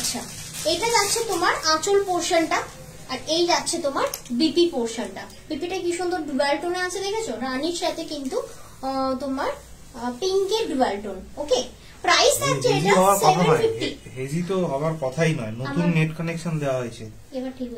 এটা যাচ্ছে তোমার আঁচল পোর্শনটা, আর এই যাচ্ছে তোমার বিপি পোর্শনটা। বিপিটা কি সুন্দর ডুয়াল টোনে আছে, দেখেছো, রানীর সাথে কিন্তু তোমার পিঙ্কের ডুয়াল টোন, ওকে। প্রাইস থাকছে এটা 750। হেজি তো হবার কথাই নয়, নতুন নেট কানেকশন দেওয়া হয়েছে, এবার ঠিক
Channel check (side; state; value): both; identical; correlation 1.00